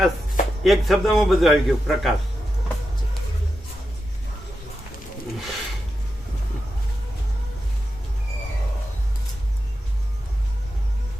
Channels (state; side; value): normal; both; correlation 0.89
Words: એક શબ્દમાં બધું આવી ગયું. પ્રકાશ